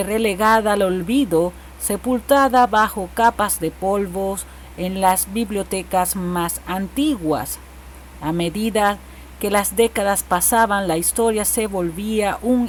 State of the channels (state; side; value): identical; both; correlation 1.00